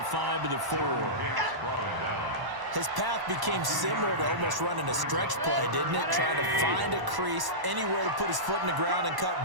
5 to the 4. His path became similar to almost running a stretch play, didn't it? Trying to find a crease, anywhere to put his foot in the ground and cut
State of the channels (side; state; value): left; late; 1.0 ms